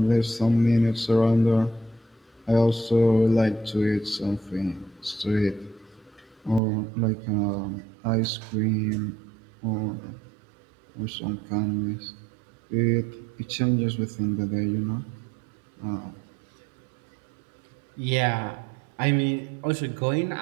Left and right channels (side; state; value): left; drops out; at 6.6 s